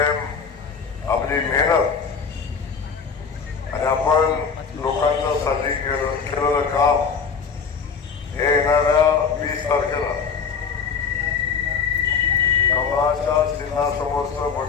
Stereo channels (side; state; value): right; quieter; 5.9 dB